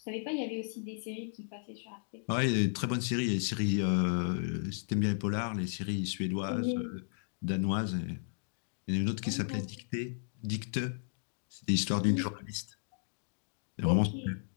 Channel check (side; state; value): right; silent; digital silence